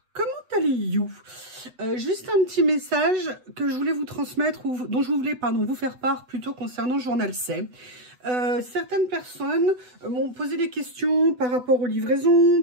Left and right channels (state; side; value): late; left; 8.0 ms